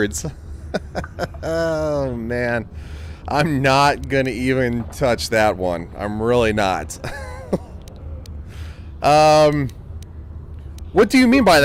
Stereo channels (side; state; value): both; identical; correlation 1.00